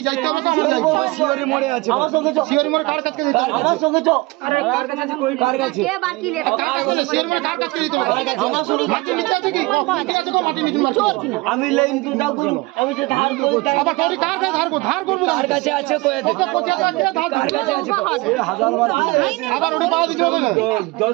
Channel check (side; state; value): left; quieter; 23.3 dB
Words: যাইতে হবে তো আমরা যাইবো। শিওরি মোড়ে আছে আমার সঙ্গে শিওরি মোড় কার কাছে দিতে হবে? আমার সঙ্গে কার কাছে শিওরি মোড় কার কাছে দিতে হবে? আমার সঙ্গে মাটি নিতে আছে কি ঠিক আছে, মাটি নিতে মার আমি লাইন তো দাও করব, আমি যে ধার করি আবার তোর কার কাছে ধার করব, কার কাছে আছে কই ওকে 25,000 টাকা ধার কার কাছে আছে 1000 বার আবার ওটা পাওয়া দিতে হবে না।